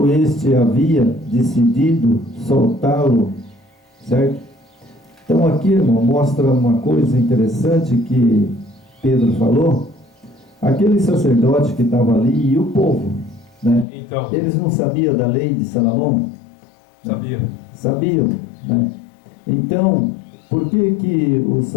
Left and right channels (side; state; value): right; drops out; at 13.9 s